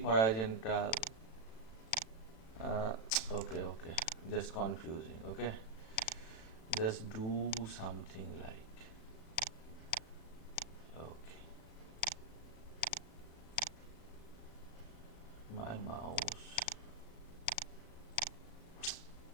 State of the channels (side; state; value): right; late; 36 ms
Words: Okay, just confusing. Okay, just do something like, okay, my mouse.